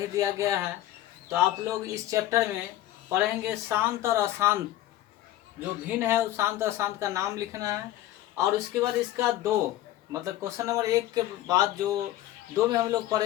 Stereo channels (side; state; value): right; quieter; 14.2 dB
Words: दिया गया है, तो आप लोग इस चैप्टर में पढ़ेंगे शांत और अशांत। जो भिन्न है उस शांत और अशांत का नाम लिखना है, और उसके बाद इसका दो मतलब क्वेश्चन नंबर 1 के बाद जो 2 में हम लोग